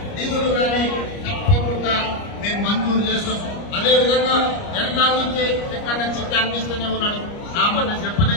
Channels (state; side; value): late; right; 29 ms